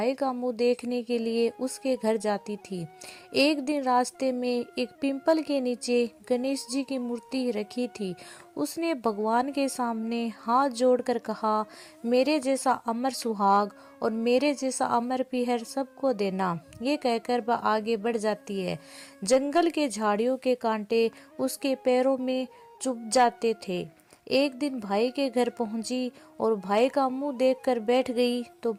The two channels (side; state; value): both; identical; correlation 1.00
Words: का मुंह देखने के लिए उसके घर जाती थी। एक दिन रास्ते में एक पिंपल के नीचे गणेश जी की मूर्ति रखी थी। उसने भगवान के सामने हाथ जोड़कर कहा, मेरे जैसा अमर सुहाग और मेरे जैसा अमर पीहर सबको देना। ये कहकर वह आगे बढ़ जाती है। जंगल के झाड़ियों के कांटे उसके पैरों में चुभ जाते थे। एक दिन भाई के घर पहुंची और भाई का मुंह देखकर बैठ गई तो